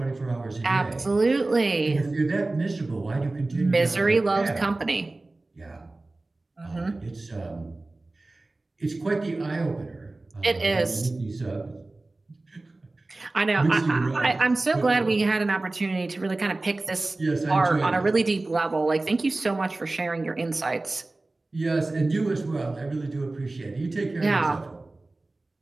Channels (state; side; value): quieter; left; 3.0 dB